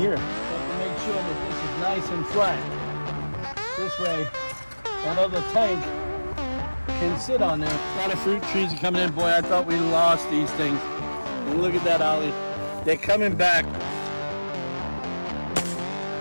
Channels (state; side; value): inverted; both; correlation -1.00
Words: So to make sure that this is nice and flat. This way, that other tank can sit on there. A lot of fruit trees are coming in. Boy, I thought we lost these things. And look at that, Ollie. They're coming back.